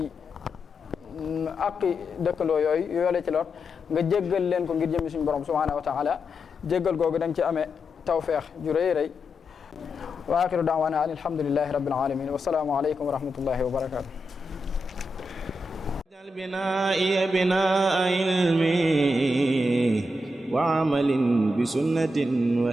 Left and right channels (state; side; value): normal; both; correlation 0.86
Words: aqi dëkkandoo yooyu yoole ci lor nga jéggal leen ko ngir jëmmi suñu borom subhanahu wa taala jéggal googu da nga ci amee tawfeex ju rëy rëy wa axiru daawana an alhamdulillahi rabbil alamin wa salaamu aleykum wa rahmatullahi wa barakatuh بنائي بناء علمي وعمل بسنة